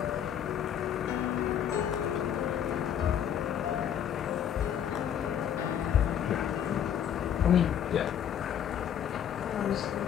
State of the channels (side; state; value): right; quieter; 9.3 dB